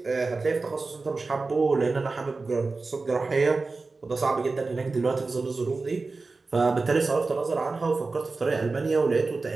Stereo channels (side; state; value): left; quieter; 3.8 dB